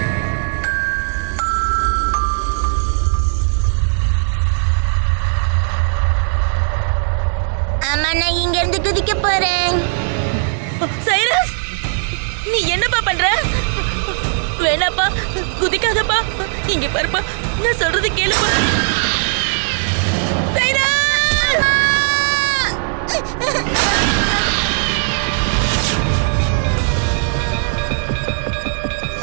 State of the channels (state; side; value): silent; left; digital silence